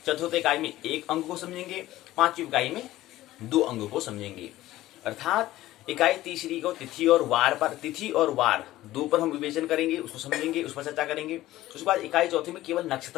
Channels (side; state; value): right; quieter; 15.7 dB